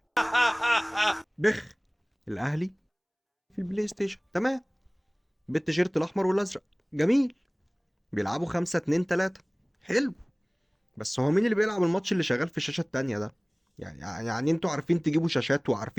بخ. الاهلي في البلاي ستيشن تمام، بالتيشيرت الاحمر والازرق. جميل. بيلعبوا 5-2-3. حلو. بس هو مين اللي بيلعب الماتش اللي شغال في الشاشه التانيه ده؟ يعني انتوا عارفين تجيبوا شاشات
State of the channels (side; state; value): both; identical; correlation 1.00